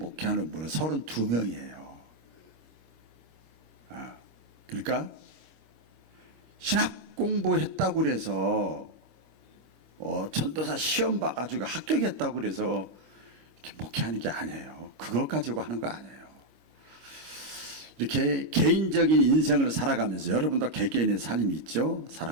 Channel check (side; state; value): left; late; 26 ms